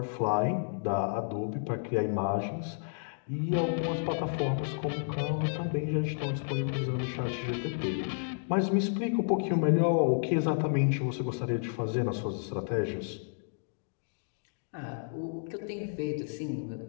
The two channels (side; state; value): right; silent; digital silence